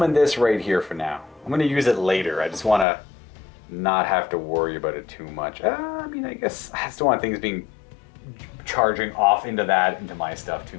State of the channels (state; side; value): drops out; right; at 2.9 s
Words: this right here for now. I'm going to use it later. I just want to not have to worry about it too much. I mean, I guess I just don't want things being charging off into my stuff